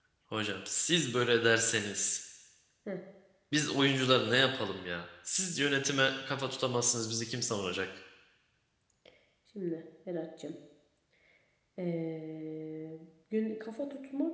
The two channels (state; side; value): identical; both; correlation 1.00